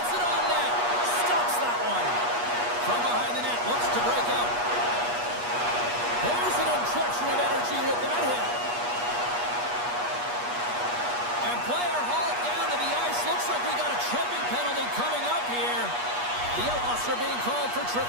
it on net. Stops that one. From behind the net, looks to break out. There's an injection of energy with that hit. And player hauled down to the ice. Looks like we got a tripping penalty coming up here. The Outlaws are being called for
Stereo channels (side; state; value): left; late; 8.3 ms